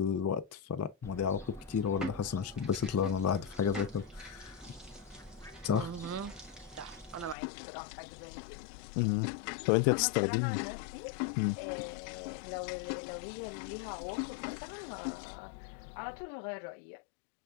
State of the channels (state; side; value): drops out; right; at 7.4 s